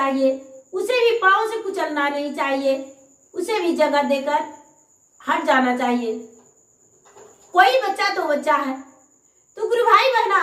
उसे भी पाँव से कुचलना नहीं चाहिए, उसे भी जगह देकर हट जाना चाहिए। कोई बच्चा तो बच्चा है। तो गुरु भाई बहना,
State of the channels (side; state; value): both; identical; correlation 1.00